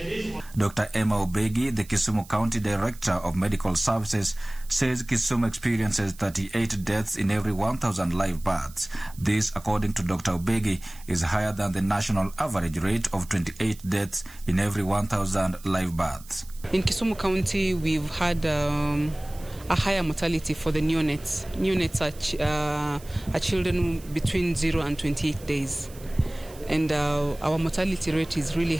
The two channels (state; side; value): noise; right; hiss, 21 dB below the sound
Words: Dr. Emma Obegi, the Kisumu County Director of Medical Services, says Kisumu experiences 38 deaths in every 1,000 live births. This, according to Dr. Obegi, is higher than the national average rate of 28 deaths in every 1,000 live births. In Kisumu County, we've had a higher mortality for the neonates. Neonates are children between 0 and 28 days. And our mortality rate is really